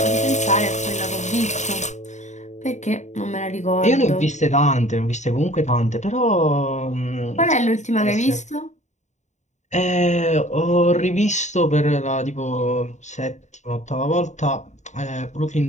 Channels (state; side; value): late; right; 0.34 ms